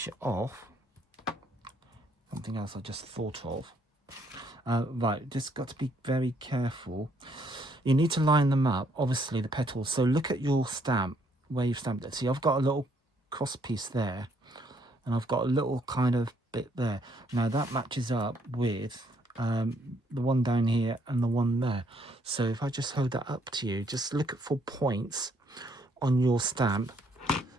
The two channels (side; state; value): both; normal; correlation 0.69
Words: it off, something else I just thought of. Right, just got to be very careful. You need to line them up, obviously the petals. So look at your stamp, where you've stamped it. See, I've got a little cross piece there, and I've got a little kind of bit there. Now that matches up with the one down here and the one there. So if I just hold that up to you, just look for points on your stamp